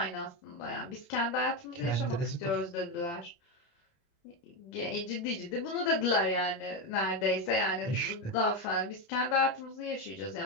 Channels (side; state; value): right; late; 29 ms